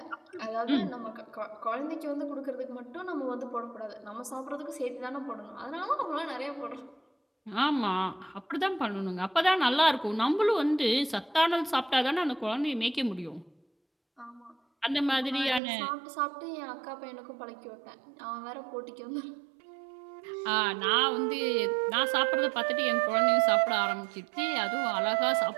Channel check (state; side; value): drops out; left; at 15.6 s